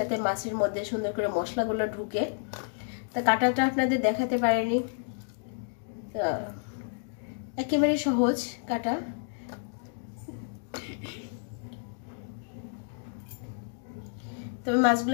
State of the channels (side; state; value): right; silent; digital silence